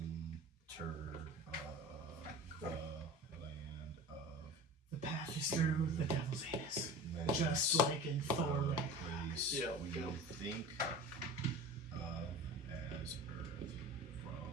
of the land of The path is through the devil's anus. menace. Just like in Thor. The Right? place Yeah, we go. think of as Earth.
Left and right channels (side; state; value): both; normal; correlation 0.35